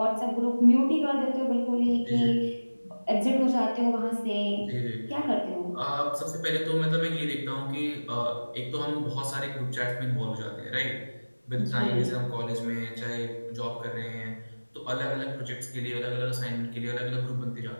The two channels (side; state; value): both; inverted; correlation -1.00